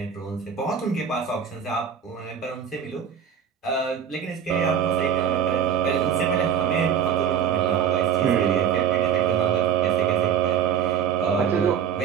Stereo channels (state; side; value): quieter; left; 8.0 dB